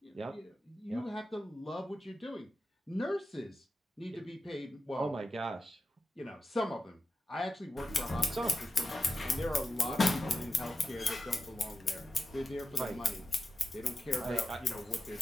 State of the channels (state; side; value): normal; both; correlation 0.90